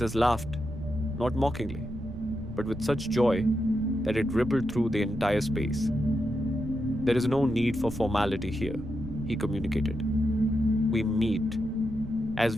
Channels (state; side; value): noise; right; rumble, 11 dB below the sound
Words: laughed, not mockingly, but with such joy that it rippled through the entire space. "There is no need for formality here," he communicated. "We meet as